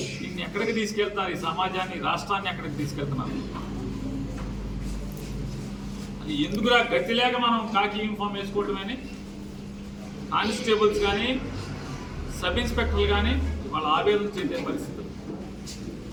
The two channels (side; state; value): both; identical; correlation 1.00